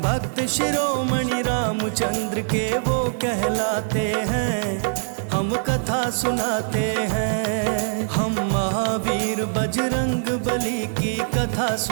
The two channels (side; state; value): left; silent; 63 dB below the other